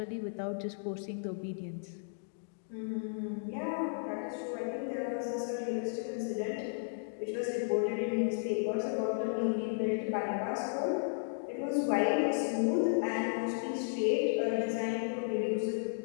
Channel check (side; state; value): right; silent; digital silence